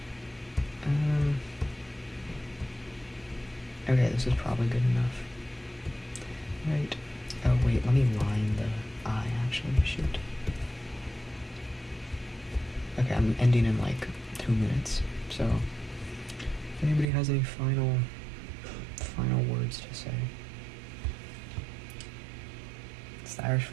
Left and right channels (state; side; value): drops out; left; at 17.1 s